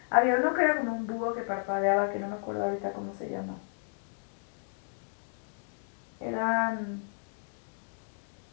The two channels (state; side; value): silent; right; 56 dB below the other